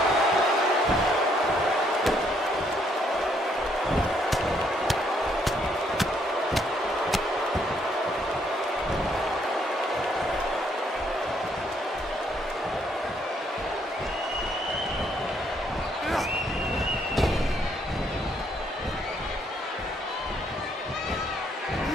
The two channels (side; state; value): both; normal; correlation 0.70